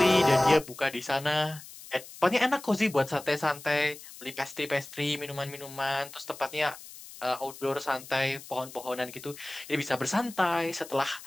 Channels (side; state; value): left; noise; hiss, 16 dB below the sound